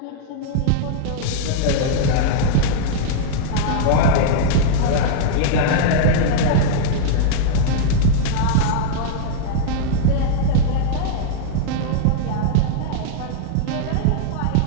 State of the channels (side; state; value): both; different; correlation -0.02